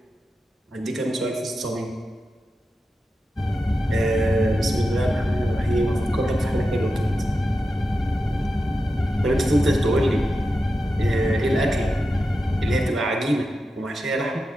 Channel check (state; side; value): normal; both; correlation 0.90